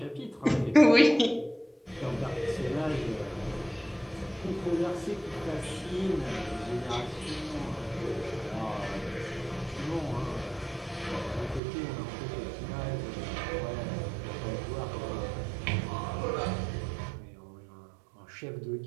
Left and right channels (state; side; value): drops out; left; at 11.6 s